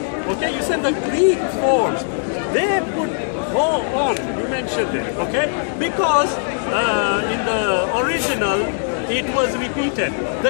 Okay, you said the Greek forms, they put ho on, you mentioned it, okay? Because in the original, it was repeated.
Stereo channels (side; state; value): right; silent; digital silence